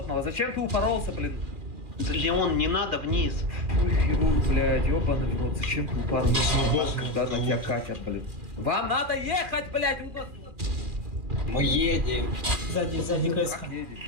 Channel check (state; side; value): late; left; 2.4 ms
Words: Зачем ты упоролся, блин? Леон, не надо вниз. Ой, хирург, блядь, ёбаный в рот. Зачем ты упоролся, когда на тебя катят, блин? Вам надо ехать, блядь! Мы едем. Сзади КС. Как едете?